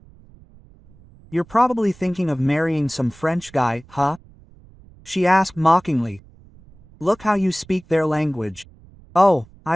You're probably thinking of marrying some French guy, huh? She asked mockingly. Look how you speak their language. Oh,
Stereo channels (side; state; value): right; noise; rumble, 25 dB below the sound